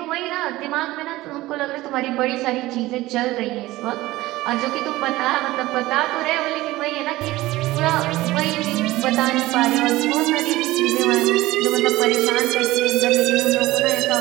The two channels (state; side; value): quieter; left; 18.0 dB